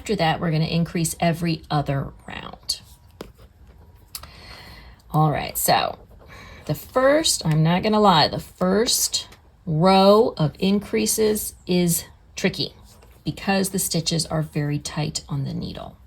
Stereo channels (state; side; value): identical; both; correlation 1.00